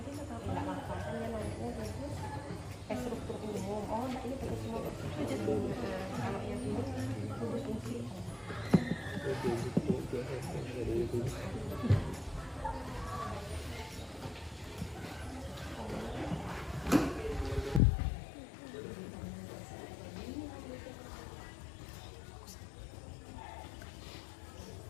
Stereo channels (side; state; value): right; drops out; at 17.8 s